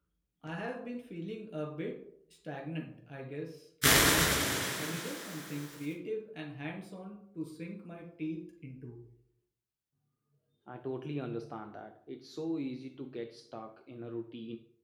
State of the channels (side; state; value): both; identical; correlation 1.00